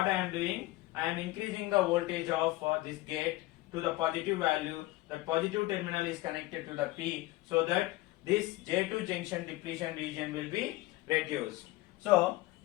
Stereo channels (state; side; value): quieter; right; 18.8 dB